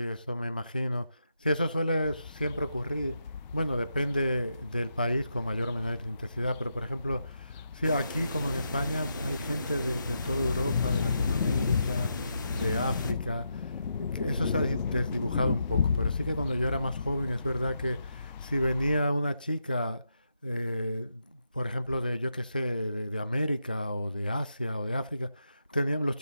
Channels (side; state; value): both; inverted; correlation -0.84